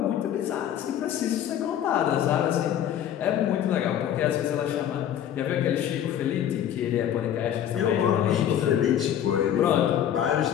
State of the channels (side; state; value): right; quieter; 10.2 dB